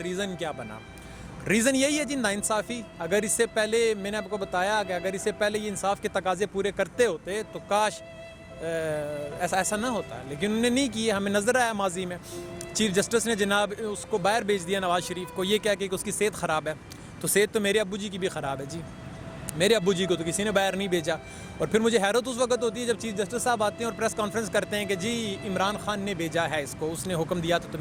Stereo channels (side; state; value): both; identical; correlation 1.00